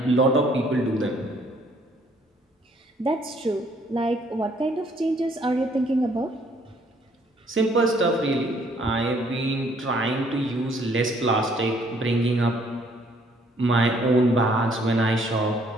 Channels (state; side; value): normal; both; correlation 0.64